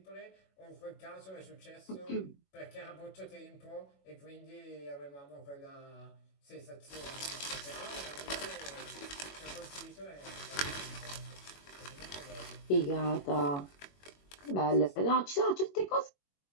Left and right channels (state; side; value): late; right; 21 ms